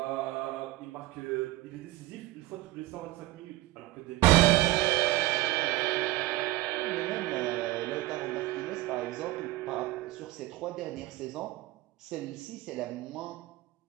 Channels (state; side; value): quieter; left; 17.7 dB